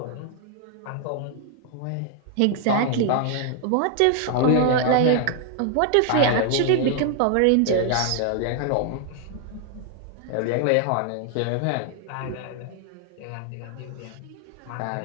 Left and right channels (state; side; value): different; both; correlation 0.00